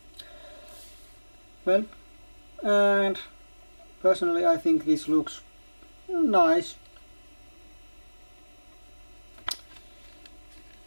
Well, and personally I think this looks nice.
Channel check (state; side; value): inverted; both; correlation -1.00